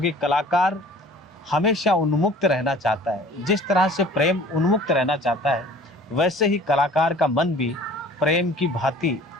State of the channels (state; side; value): normal; both; correlation 0.48